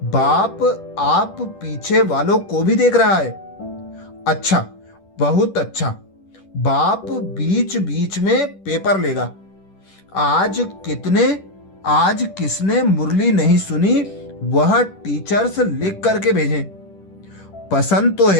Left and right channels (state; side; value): late; right; 10 ms